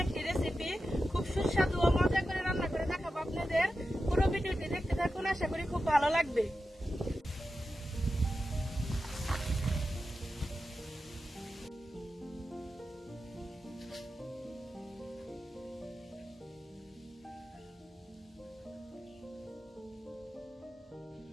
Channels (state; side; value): normal; both; correlation 0.91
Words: একটি রেসিপি। খুব সুস্বাদু ও মজা করে রান্না করে দেখাবো আপনাদের। পুরো ভিডিওটি দেখতে থাকুন, আশা করি খুব ভালো লাগবে।